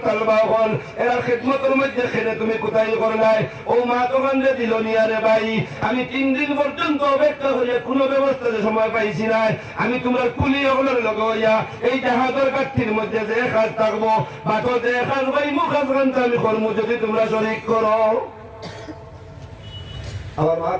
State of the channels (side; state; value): both; identical; correlation 1.00